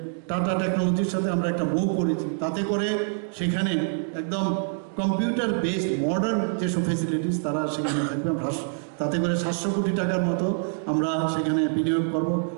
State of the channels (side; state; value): left; silent; digital silence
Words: টাটা টেকনোলজির সাথে আমরা একটা মুভ করেছি, তাতে করে সেখানে একদম কম্পিউটার বেসড মডার্ন যেসব ফেসিলিটিস তারা সেখানে থাকবে। তাতে করে 700 কোটি টাকার মতো আমরা সেখানে বিনিয়োগ করব,